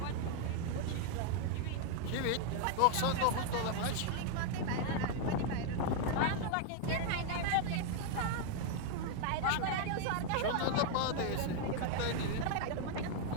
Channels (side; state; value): both; different; correlation 0.00